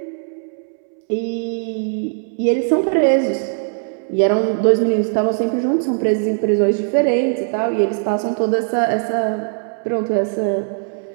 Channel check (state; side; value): silent; left; 66 dB below the other